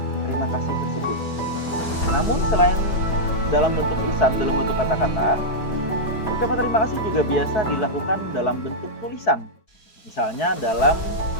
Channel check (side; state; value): right; late; 4.7 ms